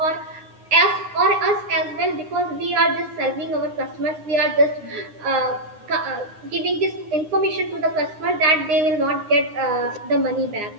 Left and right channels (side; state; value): left; late; 9.7 ms